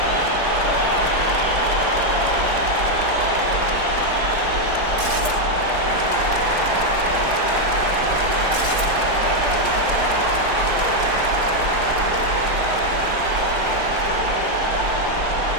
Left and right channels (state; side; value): late; left; 4.8 ms